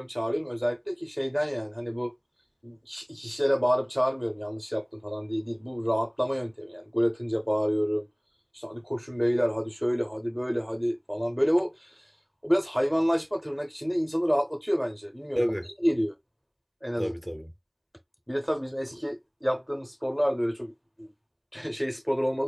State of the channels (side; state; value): both; identical; correlation 1.00